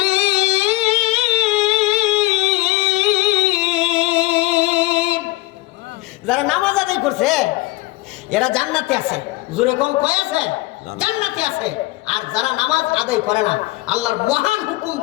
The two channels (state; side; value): quieter; right; 20.2 dB